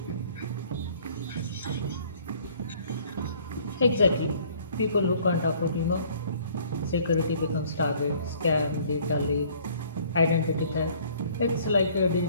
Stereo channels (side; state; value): both; inverted; correlation -0.56